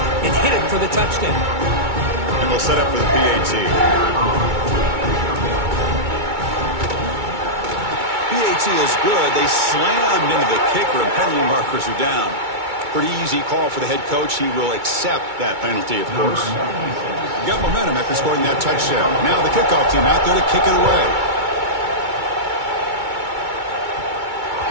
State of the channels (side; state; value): left; late; 2.2 ms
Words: hit it for the touchdown. And they'll set up for the PAT. PAT is good. They slammed into the kicker, and penalty markers are down. Pretty easy call for the head coach. He will accept that penalty, of course. Got momentum after scoring that touchdown. Now the kickoff team out there to kick it away.